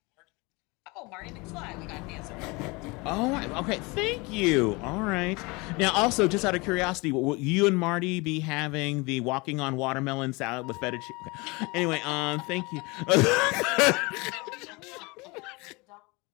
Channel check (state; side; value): quieter; right; 25.9 dB